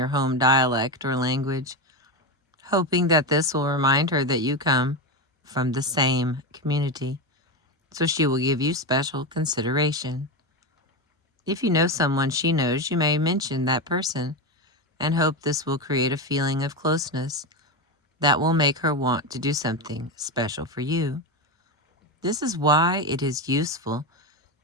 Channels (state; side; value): normal; both; correlation 0.15